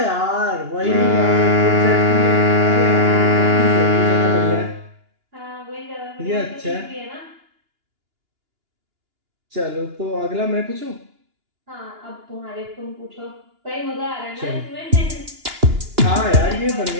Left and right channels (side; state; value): left; late; 2.9 ms